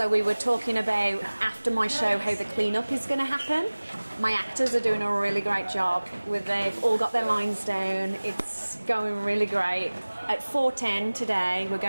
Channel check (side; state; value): both; inverted; correlation -1.00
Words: we were talking about after my show how the clean-up is going to happen. My actors are doing a really great job. They've all got their lines down. It's going really great. At 4:10 today, we're